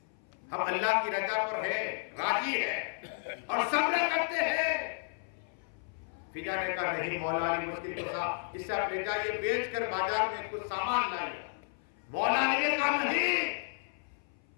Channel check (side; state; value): right; silent; 56 dB below the other